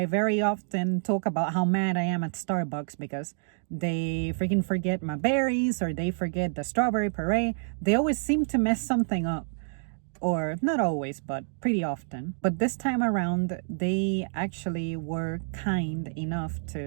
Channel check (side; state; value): left; silent; digital silence